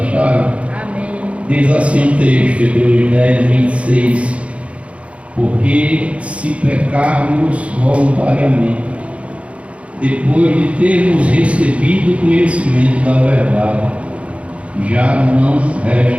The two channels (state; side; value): late; left; 0.062 ms